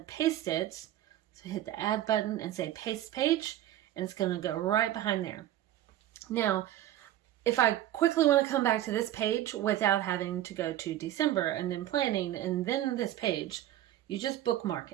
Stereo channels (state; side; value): quieter; left; 13.2 dB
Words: paste it. So hit the add button and say paste page, and it's going to go right behind there. Now, if I quickly want to come back to this page without having to go to December and then planning and then this page, you just bookmark